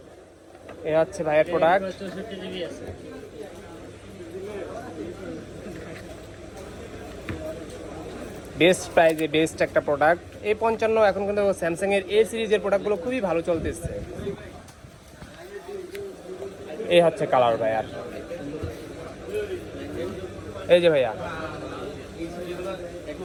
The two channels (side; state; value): both; identical; correlation 1.00